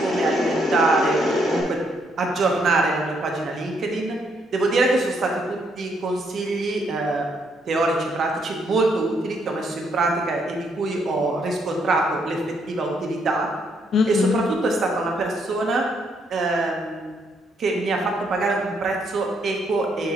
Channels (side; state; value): both; normal; correlation 0.73